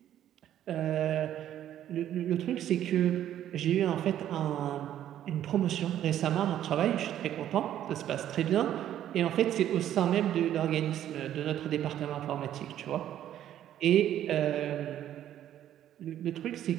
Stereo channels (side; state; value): left; quieter; 11.4 dB